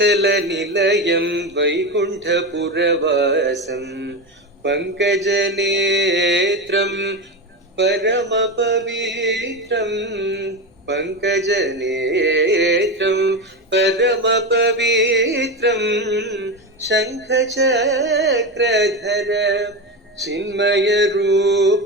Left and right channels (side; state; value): both; normal; correlation 0.18